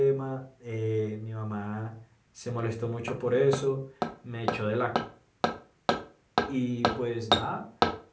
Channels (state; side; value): identical; both; correlation 1.00